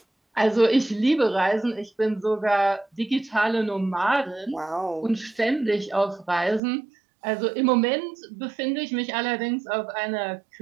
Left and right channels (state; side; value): drops out; left; at 6.6 s